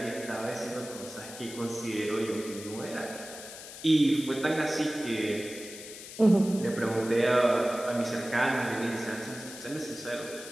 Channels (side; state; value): left; noise; hiss, 13 dB below the sound